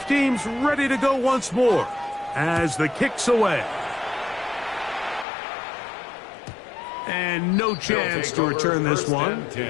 teams ready to go once more as the kick's away. And no chance to return this one.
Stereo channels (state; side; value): drops out; right; at 5.2 s